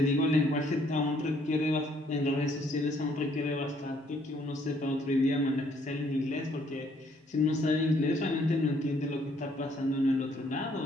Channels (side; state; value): both; normal; correlation 0.66